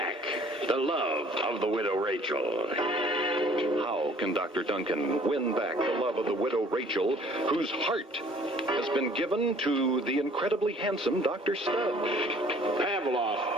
the love of the widow Rachel. How can Dr. Duncan win back the love of the widow Rachel, whose heart has been given to the incredibly handsome Dr. Studd?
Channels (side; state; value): both; normal; correlation 0.55